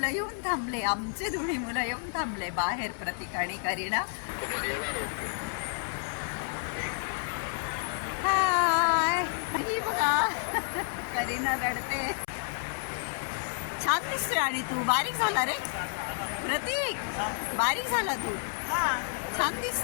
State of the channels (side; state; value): right; silent; 58 dB below the other